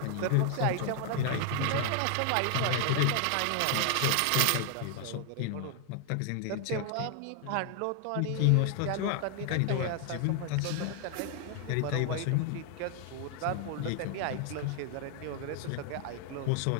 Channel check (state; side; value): different; both; correlation 0.00